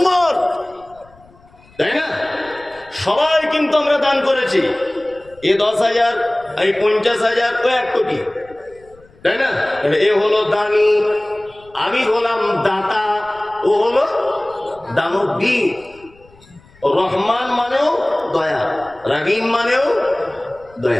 তাই না? সবাই কিন্তু আমরা দান করেছি। এ 10,000, এই 50,000, ও 1 কোটি, তাই না? এ হলো দানি, আমি হলাম দাতা, ও হলো দানবীর। রহমান মানেও দয়া, রহিম মানেও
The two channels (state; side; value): noise; left; rumble, 28 dB below the sound